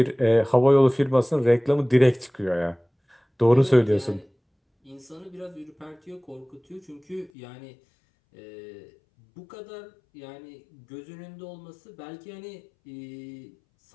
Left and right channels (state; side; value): drops out; right; at 7.3 s